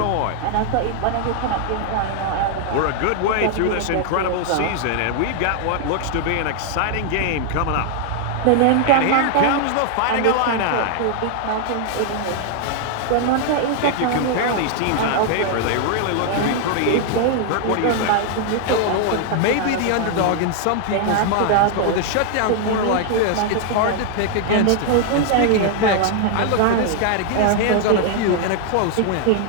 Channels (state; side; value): different; both; correlation 0.00